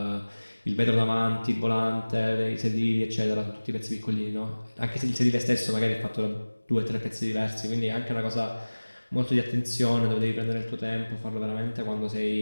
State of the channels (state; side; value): inverted; both; correlation -1.00